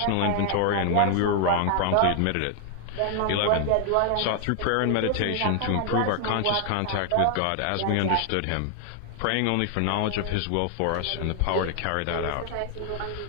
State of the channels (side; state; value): both; different; correlation 0.00